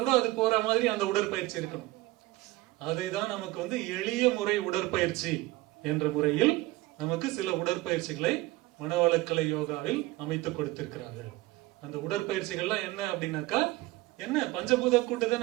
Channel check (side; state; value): left; quieter; 19.4 dB